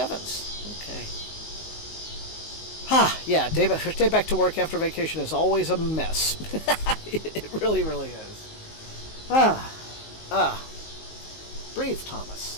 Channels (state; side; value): late; right; 19 ms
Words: Okay. Yeah, day back to work after vacation is always a mess. It really is. Breathe,